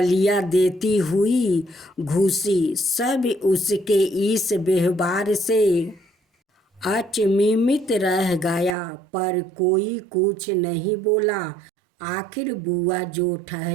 देती हुई घुसी। सब उसके इस व्यवहार से अचंभित रह गया, पर कोई कुछ नहीं बोला। आखिर बुआ जो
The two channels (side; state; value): left; drops out; at 8.8 s